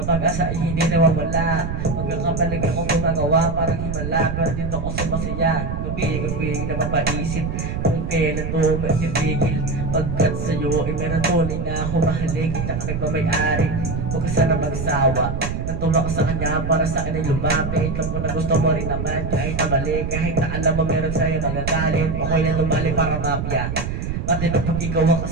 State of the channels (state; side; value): noise; right; rumble, 3 dB below the sound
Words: pag-asa ay hindi nawawala. Magkakapalig akong gumagawa parang himala, pero dito ako sumasaya. Gabi-gabi na mapaisip kung kailan to magtitigil. Pagkat sa'yo ay meron tunay na humahalig. Hindi ka nagmamayari, huwag ka sana magsawa. Natulong ka sa kanya para sa akin ay lumapit. Alam ko na gusto mo rin naman kahit na mali. Kahit na alam mo meron sa'yo magagalit, ako'y na tumali para mapya. Pati na pag ikaw ang